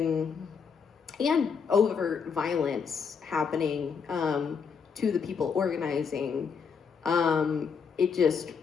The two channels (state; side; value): quieter; right; 6.1 dB